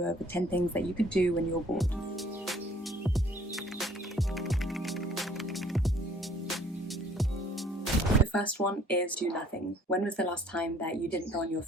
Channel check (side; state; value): both; normal; correlation 0.57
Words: of 10 things that you could do when you're bored. The first one is do nothing. When was the last time that you didn't go on your